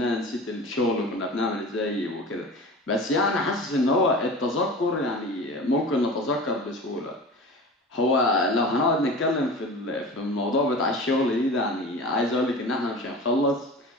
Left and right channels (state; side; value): normal; both; correlation 0.35